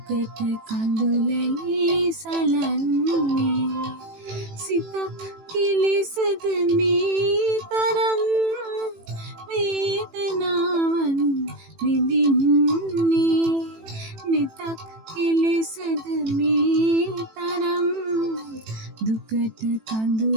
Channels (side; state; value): left; late; 18 ms